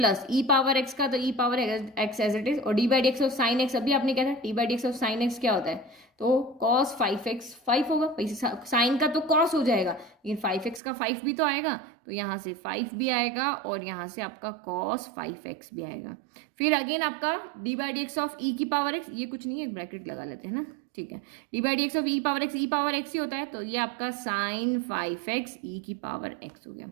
e पावर x का, तो e power x as it is, और d by d x of sine x, अभी आपने क्या था, d by d x of sine x क्या होता है, तो cos 5x 5 होगा, साइन का तो cos हो जाएगा, लेकिन 5x का 5 भी तो आएगा, तो यहाँ से 5 भी आएगा और यहाँ से आपका cos 5x भी आएगा। फिर अगेन आपका d by d x of e की पावर x, ये कुछ नहीं है, ब्रैकेट लगा लेते हैं ना, ठीक है, d by d x of e power x ही होता है, तो ये आपका साइन 5x e की पावर x हो गया।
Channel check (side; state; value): left; drops out; at 10.8 s